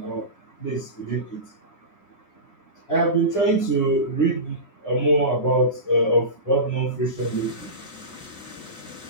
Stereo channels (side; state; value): right; late; 9.9 ms